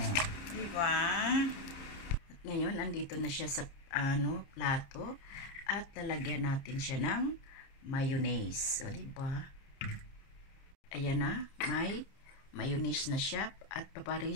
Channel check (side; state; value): right; late; 30 ms